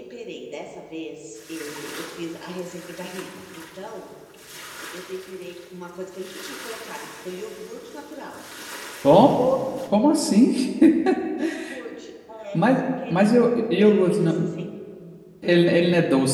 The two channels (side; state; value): both; identical; correlation 1.00